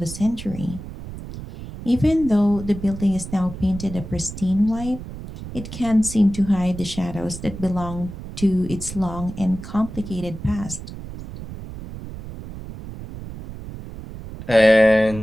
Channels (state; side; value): noise; right; rumble, 11 dB below the sound